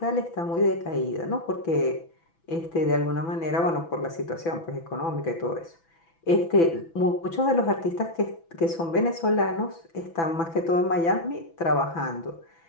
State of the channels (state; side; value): late; right; 6.0 ms